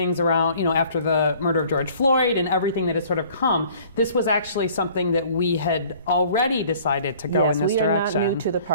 around, after the murder of George Floyd and everything that has sort of come. This was actually something that we had already decided to go in this direction. Yes, we are not new to the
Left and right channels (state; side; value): inverted; both; correlation -0.53